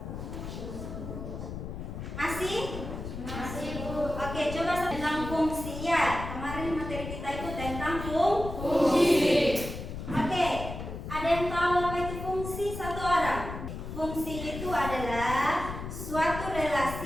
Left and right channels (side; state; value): left; noise; rumble, 8 dB below the sound